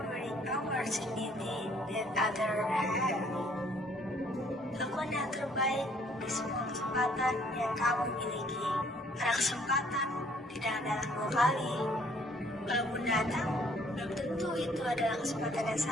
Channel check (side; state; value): both; normal; correlation 0.61